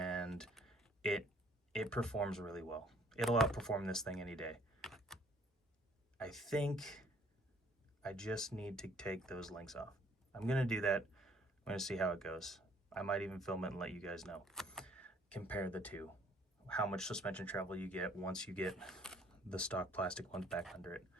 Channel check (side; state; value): both; normal; correlation 0.60